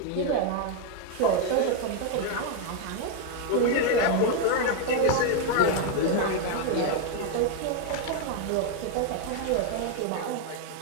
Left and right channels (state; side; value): different; both; correlation 0.01